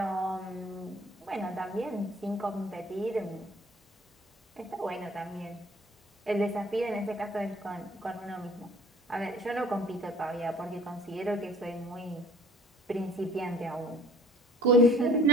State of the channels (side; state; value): both; normal; correlation 0.53